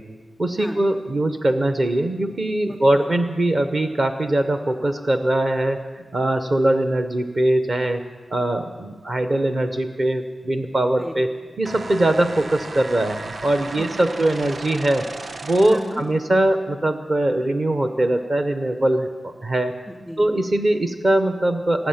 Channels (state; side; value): normal; both; correlation 0.95